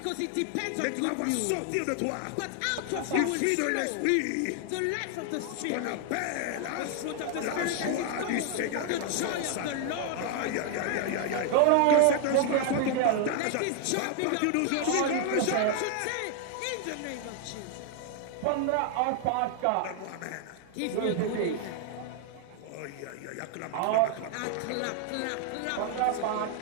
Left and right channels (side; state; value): both; different; correlation 0.00